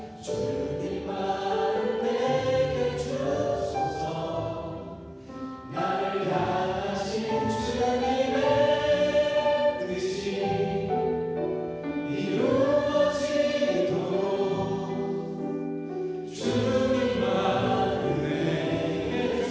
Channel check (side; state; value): both; identical; correlation 1.00